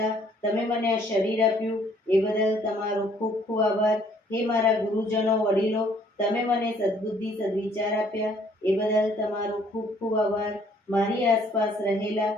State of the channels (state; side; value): normal; both; correlation 0.62